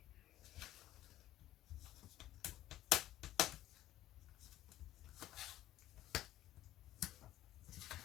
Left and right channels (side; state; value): right; quieter; 14.0 dB